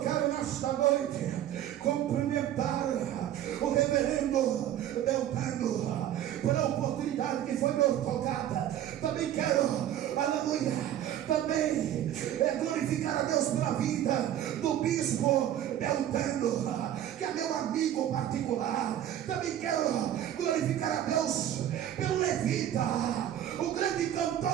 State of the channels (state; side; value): quieter; left; 11.4 dB